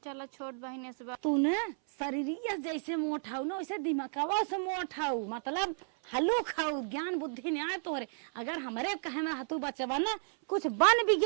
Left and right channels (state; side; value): silent; left; 56 dB below the other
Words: चला छोट बहने से तू न शरीरिया जैसे मोटाऊ ना वैसे दिमागवा से मोटाऊ मतलब हलो खाऊ ज्ञान बुद्धि नहीं आए तोहरे। अगर हमारे कहे में रहतू बचवा ना कुछ बन